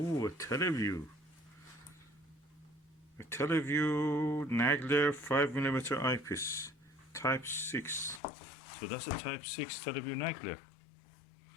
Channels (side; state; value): right; drops out; at 8.2 s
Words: a Televue. A Televue Nagler 5mm eyepiece, Type 6. So that's a Type 6 Televue Nagler.